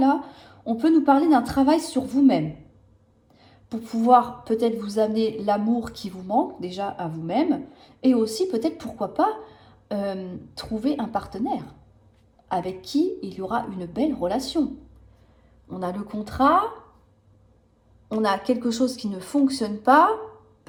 on peut nous parler d'un travail sur vous-même, pour pouvoir peut-être vous amener l'amour qui vous manque, déjà à vous-même, et aussi peut-être, pourquoi pas, trouver un partenaire avec qui il y aura une belle relation. On a le contrat, on a quelque chose qui ne fonctionne pas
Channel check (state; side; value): identical; both; correlation 1.00